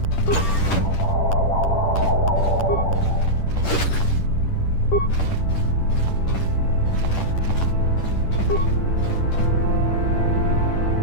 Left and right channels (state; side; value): late; right; 10 ms